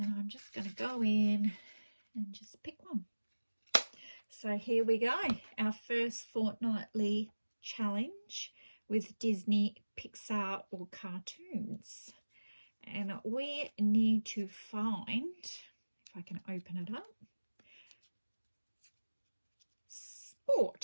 I'm just going to go in and just pick one. So here we go, our first fortnightly challenge with Disney, Pixar or cartoons. And we need to find, if I can open it up,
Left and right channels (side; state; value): both; inverted; correlation -1.00